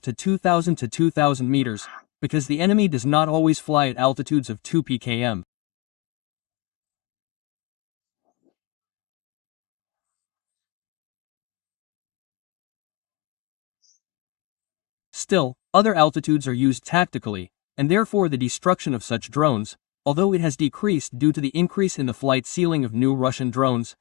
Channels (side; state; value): right; quieter; 20.0 dB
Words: to 2,000 to 2,000 meters, because the enemy does not always fly at altitudes of 2 pkm. Still, other altitudes are used tactically, and therefore the destruction of such drones, although it has decreased due to the increase in the flight ceiling of new Russian drones,